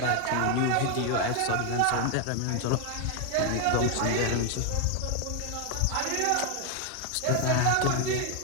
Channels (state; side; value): different; both; correlation 0.01